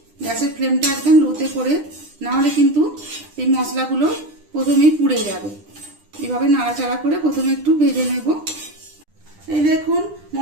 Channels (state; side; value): late; left; 10 ms